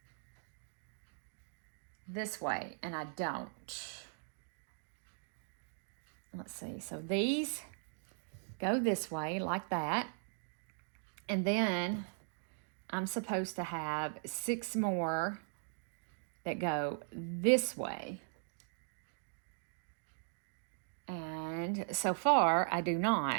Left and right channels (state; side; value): silent; left; digital silence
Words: this way, and I don't. Let's see. So these go this way like that, and then I'm supposed to have 6 more that go this way. And so far, I do